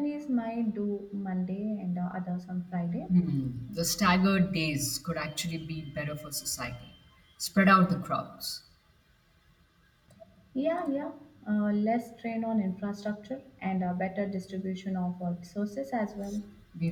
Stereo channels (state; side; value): identical; both; correlation 1.00